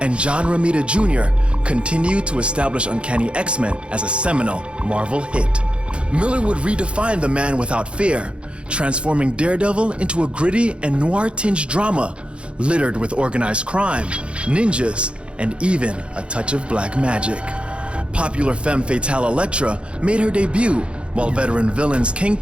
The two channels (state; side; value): late; left; 0.058 ms